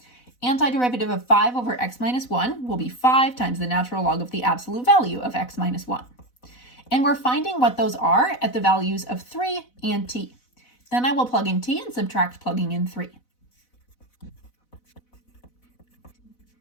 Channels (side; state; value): right; late; 4.0 ms